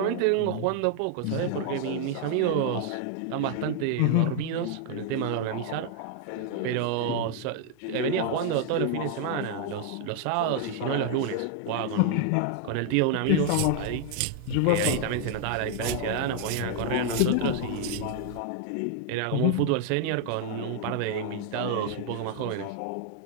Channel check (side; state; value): both; different; correlation 0.00